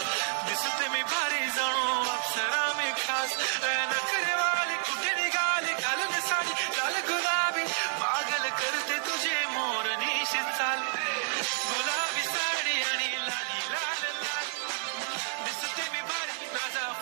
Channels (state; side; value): silent; left; digital silence